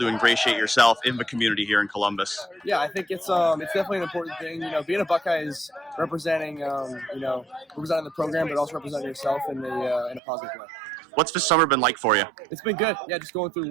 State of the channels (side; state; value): left; drops out; at 10.2 s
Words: ingratiate yourself in the community here in Columbus? Yeah, I think it's definitely an important thing. Being a Buckeye is representing representing the program, but also representing yourself in a positive way. What's the summer been like for you? It's been good. Yeah, just going through